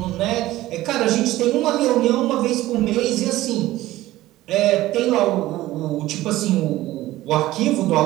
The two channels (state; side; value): quieter; left; 16.3 dB